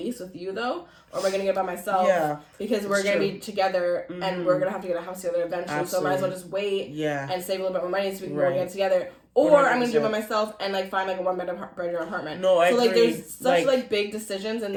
with you though, or am I gonna get by myself? Yeah. Because we're gonna be together, and we're gonna have to get a house together eventually. Absolutely. So I might as well just wait. Yeah. And save a little bit more money so we can go get together. Or 100%. I'm gonna do it by myself and like find like a one-bedroom apartment. No, I agree. So like there's such like big decisions in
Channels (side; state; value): both; identical; correlation 1.00